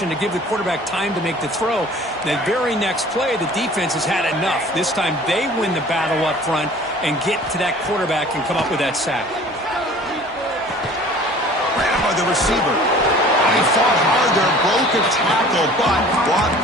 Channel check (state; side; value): normal; both; correlation 0.48